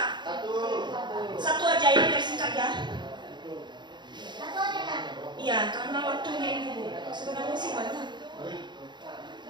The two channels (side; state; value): left; late; 0.22 ms